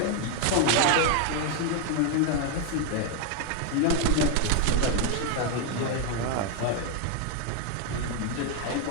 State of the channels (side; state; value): both; different; correlation 0.01